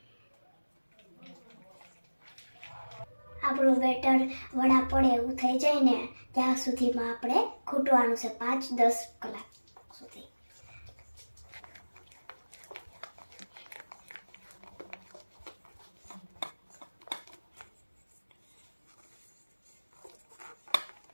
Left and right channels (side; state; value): both; inverted; correlation -1.00